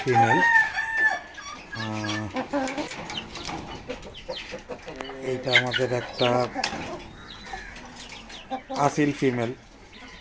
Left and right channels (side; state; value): both; identical; correlation 1.00